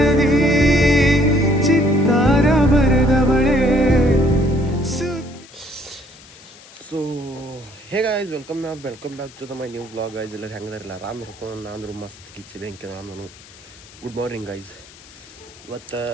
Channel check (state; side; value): noise; left; hiss, 22 dB below the sound